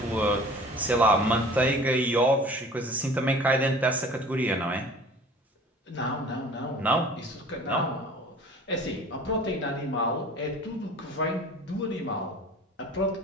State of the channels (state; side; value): normal; both; correlation 0.45